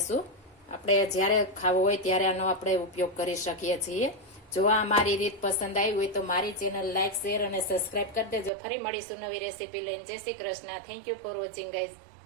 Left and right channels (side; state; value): left; drops out; at 8.5 s